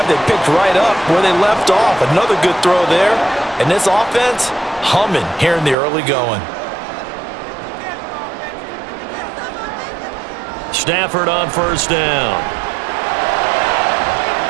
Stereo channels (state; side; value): drops out; left; at 5.8 s